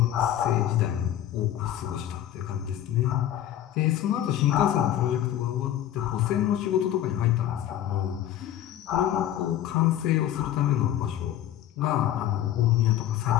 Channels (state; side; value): quieter; right; 11.8 dB